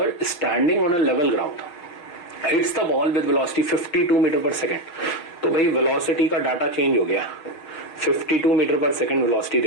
standing on a level ground, hits the ball with velocity 52 metre per second. तो भाई वेलोसिटी का डाटा चेंज हो गया, 52 मीटर पर सेकेंड वेलोसिटी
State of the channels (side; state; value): right; late; 6.5 ms